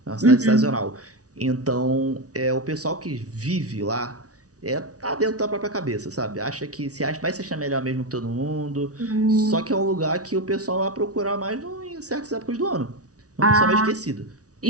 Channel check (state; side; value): late; left; 0.67 ms